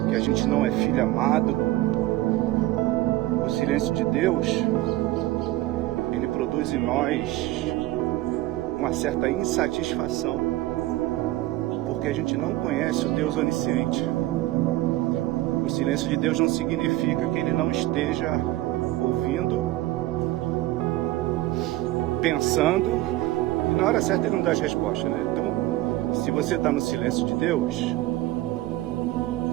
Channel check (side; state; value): left; quieter; 17.0 dB